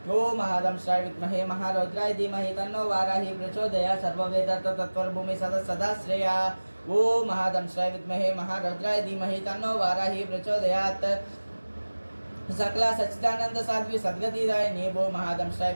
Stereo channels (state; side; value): inverted; both; correlation -1.00